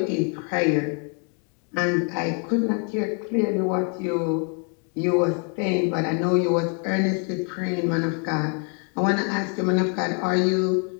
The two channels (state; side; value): quieter; right; 39.2 dB